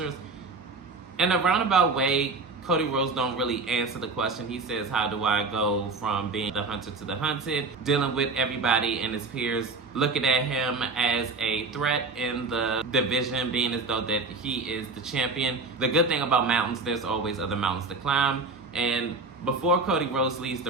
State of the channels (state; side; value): quieter; left; 3.8 dB